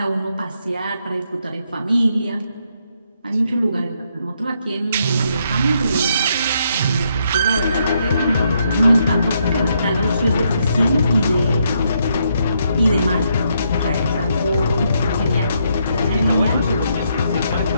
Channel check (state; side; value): inverted; both; correlation -0.75